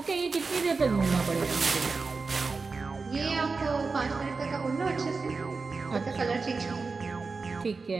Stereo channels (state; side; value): quieter; left; 4.3 dB